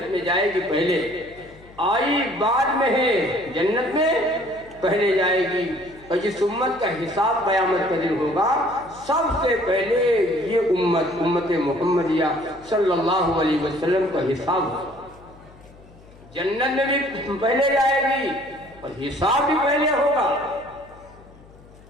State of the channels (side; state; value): left; noise; hum, 24 dB below the sound